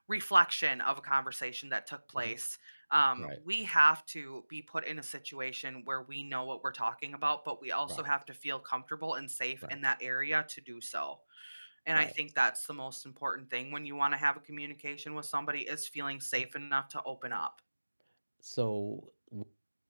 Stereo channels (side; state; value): both; inverted; correlation -1.00